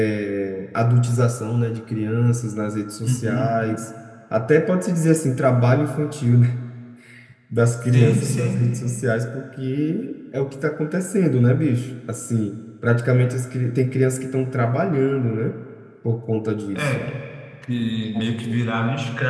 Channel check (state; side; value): identical; both; correlation 1.00